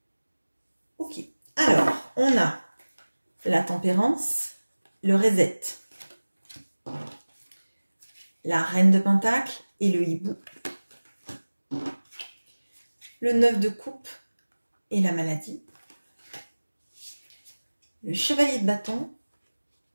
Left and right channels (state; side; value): inverted; both; correlation -1.00